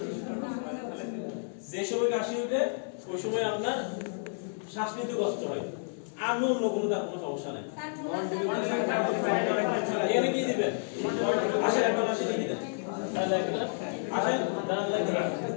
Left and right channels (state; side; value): silent; right; 57 dB below the other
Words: যে সময় কাশি উঠে ওই সময় আপনার শ্বাস নিতে কষ্ট হয়, আর অন্য কোনো তার কোনো সমস্যা নাই। এখানে কি দিবেন? আসেন এখন আসেন লিখে দেন। আসেন দাঁড়ান লাগবে না।